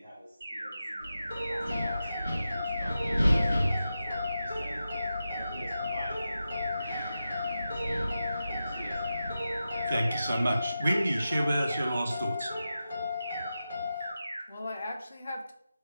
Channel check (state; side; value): inverted; both; correlation -0.90